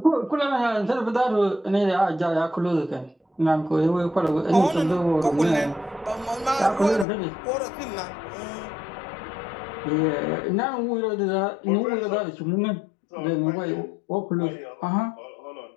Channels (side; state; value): right; drops out; at 7.1 s